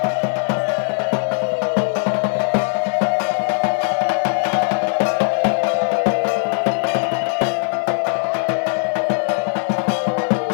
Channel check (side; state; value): right; silent; 63 dB below the other